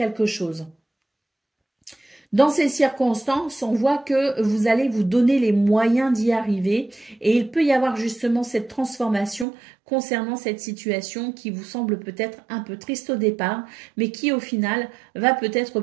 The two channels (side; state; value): left; drops out; at 9.5 s